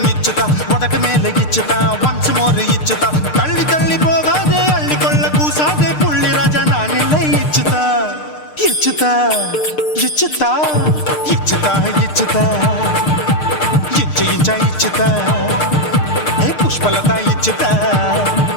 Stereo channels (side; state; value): right; late; 6.6 ms